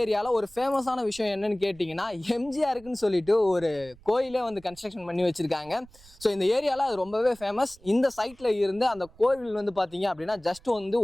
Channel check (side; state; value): right; noise; rumble, 24 dB below the sound